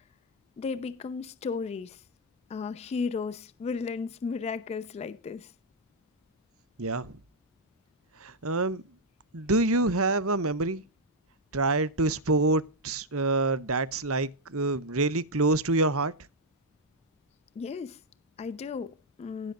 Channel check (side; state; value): both; normal; correlation 0.00